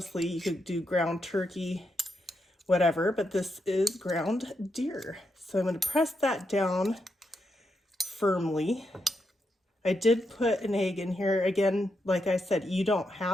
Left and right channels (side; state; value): both; normal; correlation 0.82